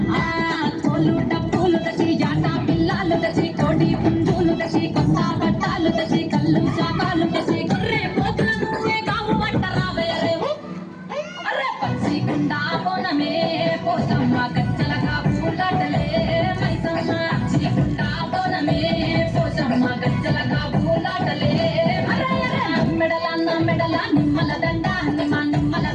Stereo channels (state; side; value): identical; both; correlation 1.00